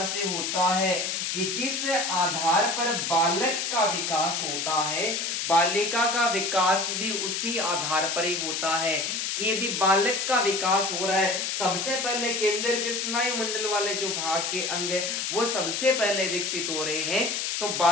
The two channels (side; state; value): left; noise; hiss, 1 dB below the sound